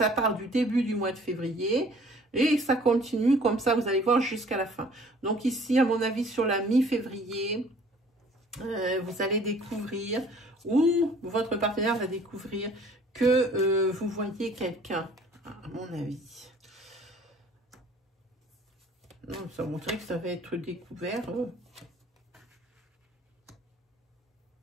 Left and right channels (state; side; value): normal; both; correlation 0.54